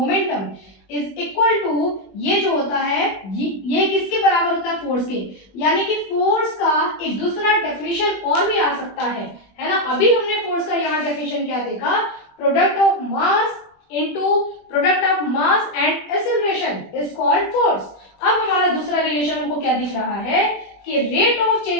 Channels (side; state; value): right; late; 21 ms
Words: is equal to, ये जो होता है ये किसके बराबर होता है, फोर्स के। यानी कि फोर्स का एक दूसरा डेफिनेशन और भी आ सकता है ना। अभी हमने फोर्स का यहाँ डेफिनेशन क्या देखा, product of mass into product of mass and acceleration is called force. अब हमारा दूसरा रिलेशन हमको क्या दिख रहा है कि rate of